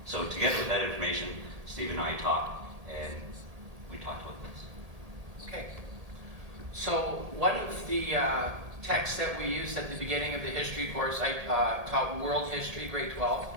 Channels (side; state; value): left; late; 1.8 ms